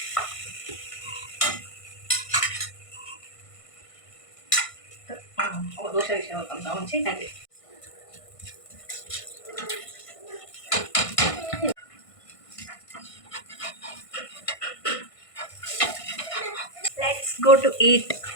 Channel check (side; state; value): right; late; 1.5 ms